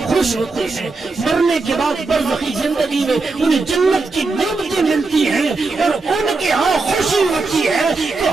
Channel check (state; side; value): quieter; left; 3.7 dB